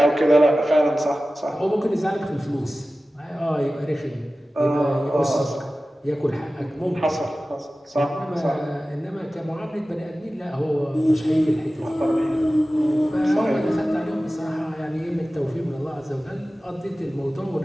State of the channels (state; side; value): normal; both; correlation 0.96